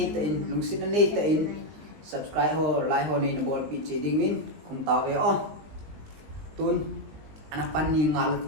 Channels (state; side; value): late; left; 19 ms